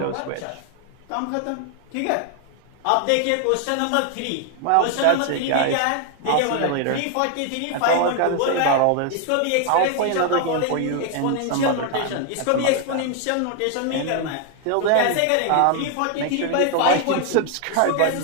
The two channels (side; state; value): both; different; correlation 0.00